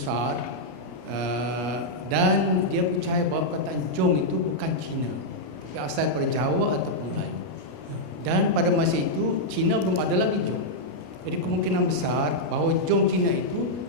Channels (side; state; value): left; late; 33 ms